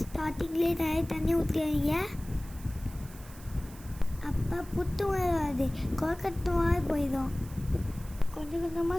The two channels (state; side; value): noise; right; hiss, 20 dB below the sound